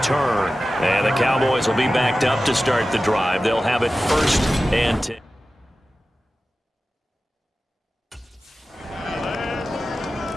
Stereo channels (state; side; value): normal; both; correlation 0.95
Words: And the Cowboys will be backed up to start the drive. They'll have it 1st and 10.